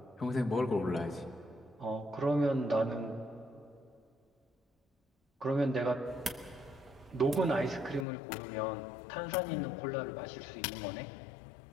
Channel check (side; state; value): right; drops out; at 8.1 s